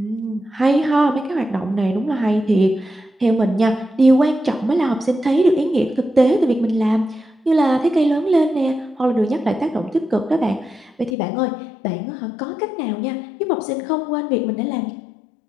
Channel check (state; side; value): drops out; right; at 11.2 s